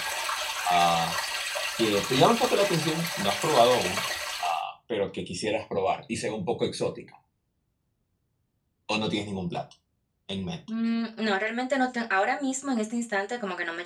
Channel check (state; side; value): identical; both; correlation 1.00